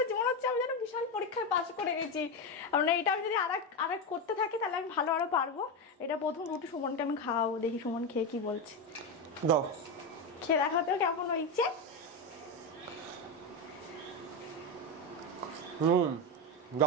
জীবন হচ্ছে আমি যেন বিশাল পরীক্ষায় পাশ করে গেছি। মানে এটা আমি যদি আরেক করতে থাকি তাহলে আমি ভালো আরো পারবো। এটা প্রথম রুটি সুমনকে আমি খাওয়াবো, দেখি সুমন খেয়ে কি বলছে। দাও, খেয়ে দেখাতেও কেমন হয়েছে।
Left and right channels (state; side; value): normal; both; correlation 0.13